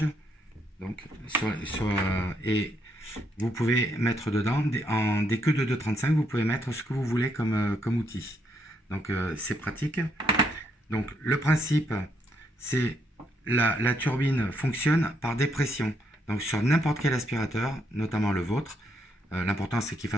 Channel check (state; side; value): normal; both; correlation 0.75